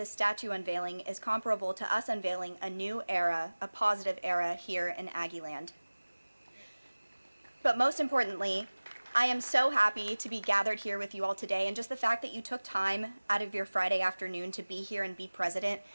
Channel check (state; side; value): inverted; both; correlation -1.00